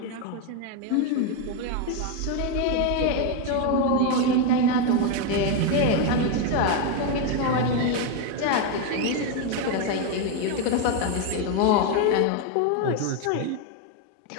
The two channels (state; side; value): different; both; correlation 0.02